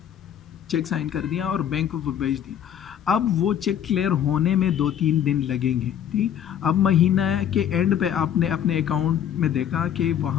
चेक साइन कर दिया और बैंक को वो भेज दिया, अब वो चेक क्लियर होने में 2-3 दिन लगेंगे। ठीक, अब महीना के एंड पे आपने अपने अकाउंट में देखा कि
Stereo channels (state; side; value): quieter; right; 9.6 dB